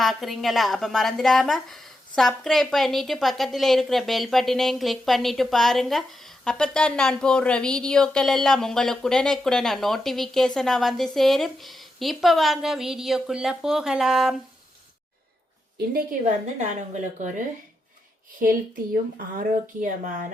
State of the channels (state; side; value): normal; both; correlation 0.86